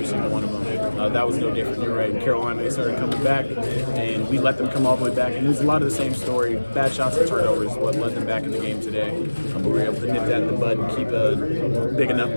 single one of them. That was no different. You're right. In Carolina, they started coming back, and we let them come all the way back. And it was a lot of the same story. Bad shots and turnovers what led them back in the game today. But we were able to nip that in the bud and keep a big enough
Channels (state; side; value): inverted; both; correlation -1.00